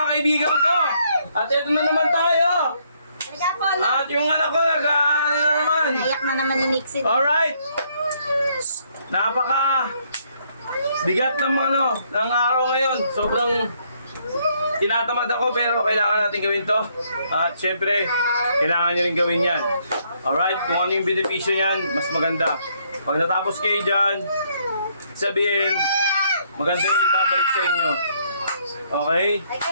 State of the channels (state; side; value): inverted; both; correlation -0.70